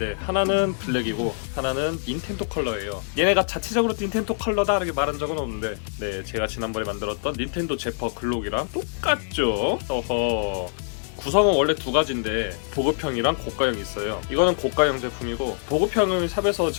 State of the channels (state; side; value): silent; right; digital silence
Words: 하나는 블랙이고 하나는 닌텐도 컬러예요. 얘네가 자체적으로 닌텐도 컬러다 이렇게 말한 적은 없는데 네, 제가 지난번에 만들었던 닌텐도 제퍼 글록이랑 똑같죠? 어허. 구성은 원래 두 가지인데 보급형이랑 고가형이 있어요. 이거는 고가형 제품이고 보급형은 샵에서